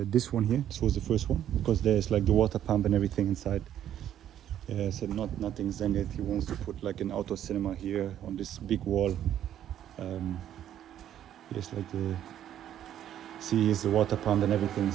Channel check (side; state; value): left; quieter; 10.9 dB